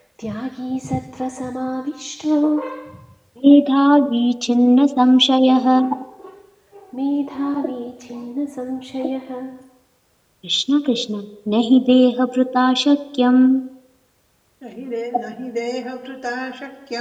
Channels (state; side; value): identical; both; correlation 1.00